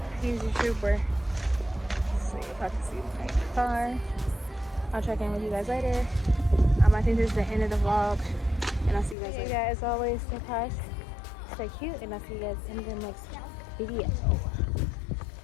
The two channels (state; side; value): drops out; right; at 9.2 s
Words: He's a trooper. Let's see if I can see the car. I'll check in with you guys later. I think this is the end of the vlog. And I'll see you guys later. As always, stay cautious, stay cute, and I'll see you guys in the next video.